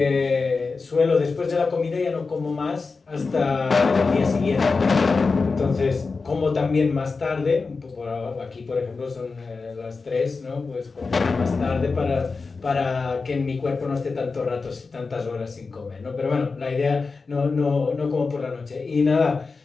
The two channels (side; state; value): right; quieter; 4.3 dB